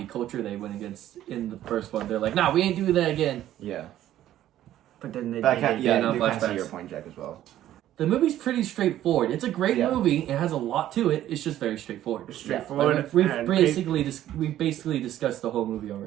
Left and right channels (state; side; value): quieter; left; 12.7 dB